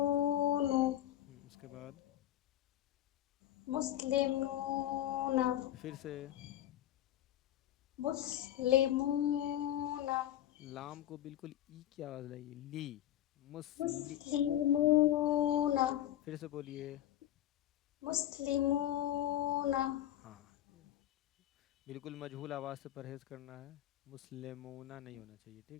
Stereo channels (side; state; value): right; quieter; 12.6 dB